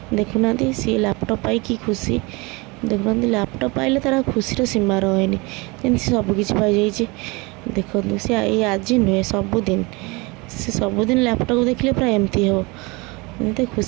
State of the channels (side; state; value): left; quieter; 26.1 dB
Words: देखुना सी लैपटॉप पाई कि खुशी देखुना लैपटॉप पाइले तार खुशी सीमा रहे जमी सबकि पाई देखो सी आज नुहे सबुदिन से सबुदिन लैपटॉप देखले पूरा एमती हो एमती